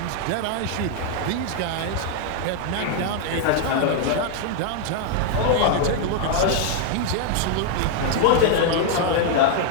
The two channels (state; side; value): different; both; correlation 0.00